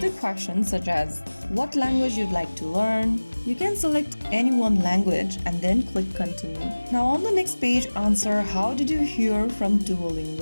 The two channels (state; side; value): inverted; both; correlation -1.00